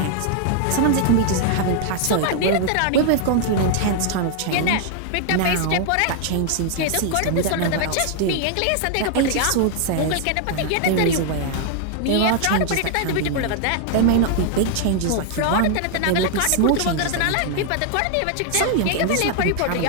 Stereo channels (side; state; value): both; different; correlation 0.00